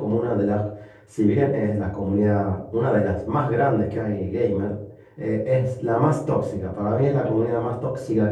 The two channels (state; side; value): identical; both; correlation 1.00